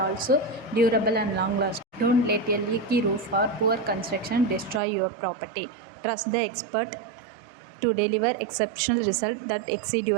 durable and long lasting. Don't let a leaky roof or poor construction destroy your property. Trust the expert to deliver exceptional results that exceed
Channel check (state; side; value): drops out; left; at 4.8 s